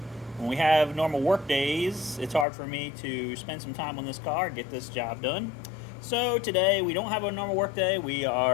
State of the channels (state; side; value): drops out; right; at 2.5 s